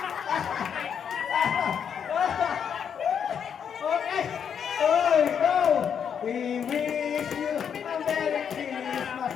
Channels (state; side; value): quieter; right; 7.7 dB